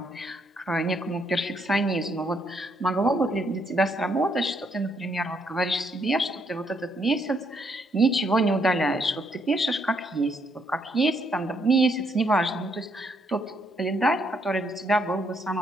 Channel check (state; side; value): normal; both; correlation 0.73